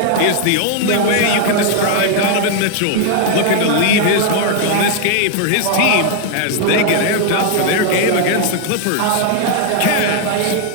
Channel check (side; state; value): both; different; correlation 0.00